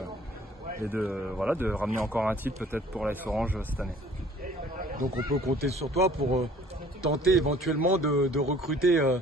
ramener encore un titre peut-être pour l'AS Orange cette année. Donc on peut compter sur toi pour tenter éventuellement de recruter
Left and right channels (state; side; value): normal; both; correlation 0.53